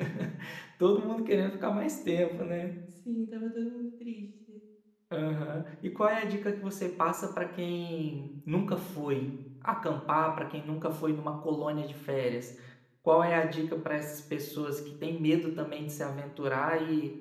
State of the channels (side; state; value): both; identical; correlation 1.00